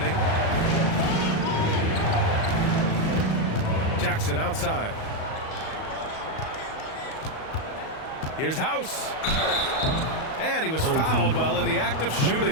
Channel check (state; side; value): late; right; 38 ms